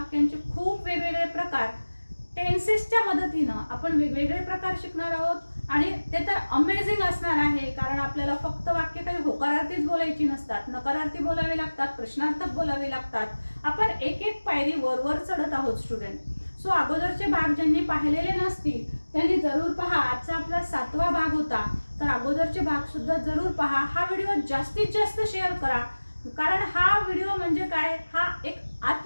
खूप वेगवेगळे प्रकार टेन्सेसच्या मदतीनं आपण वेगवेगळे प्रकार शिकणार आहोत. आणि ते तर अमेझिंग असणार आहे, कारण आपल्याला फक्त वाक्य काही होकारार्थीच बोलायची नसतात, नकारार्थी बोलावे लागतात, प्रश्नार्थक बोलावे लागतात. आपण एक एक पायरी वर चढत आहोत स्टुडंट. सो अगोदरचे भाग ज्यांनी पाहिलेले नसतील त्यांनी जरूर पहा. आजचा आपला 7वा भाग होता, तर अगोदरचे भाग सुद्धा जरूर पहा. हा व्हिडिओ जास्तीत जास्त शेअर करा, कारण हा व्हिडिओ म्हणजे काय, हा एक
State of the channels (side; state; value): both; inverted; correlation -1.00